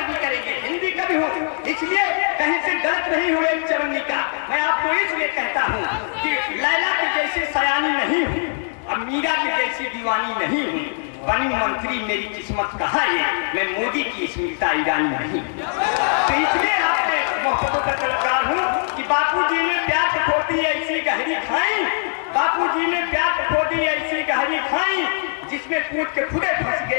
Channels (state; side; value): silent; right; digital silence